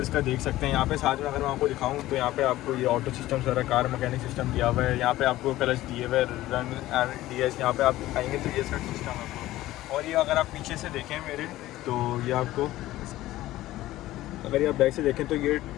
का देख सकते हैं। यहाँ पे साथ में अगर मैं आपको दिखाऊँ तो यहाँ पे आपको ये ऑटो सिस्टम सारा कार मैकेनिक सिस्टम दिया हुआ है। यहाँ पे आपको क्लच दिए हुए, रन एंड डीएस। यहाँ पे आप आएंगे तो ये इसका सिस्टम है। और ये अगर आप पीछे से देखें मेरे, तो ये आपको, अगर ये आप बैक से देखें तो ये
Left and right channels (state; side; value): quieter; right; 15.9 dB